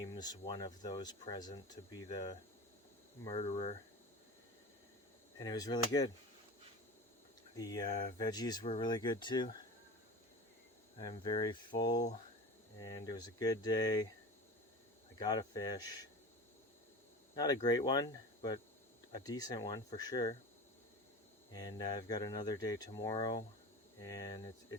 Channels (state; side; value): normal; both; correlation 0.32